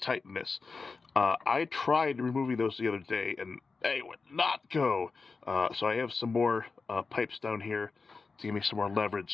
this. I tried removing those the other day, and they would not go. So I have some more pipes down here to give me some more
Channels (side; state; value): right; quieter; 4.4 dB